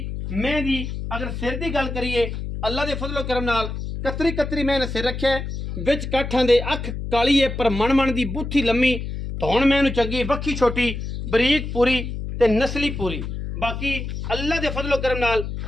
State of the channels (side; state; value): left; noise; hum, 6 dB below the sound